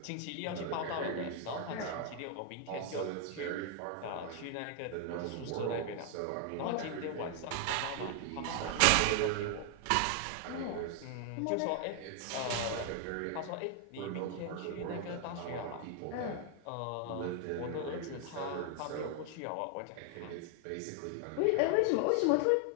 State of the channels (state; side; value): different; both; correlation 0.00